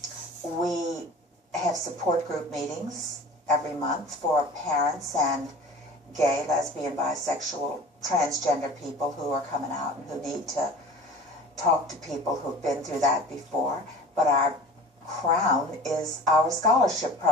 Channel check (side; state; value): both; normal; correlation 0.41